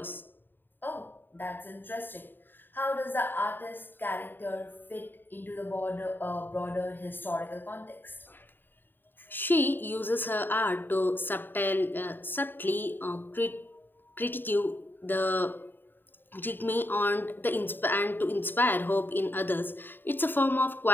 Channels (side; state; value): right; late; 0.094 ms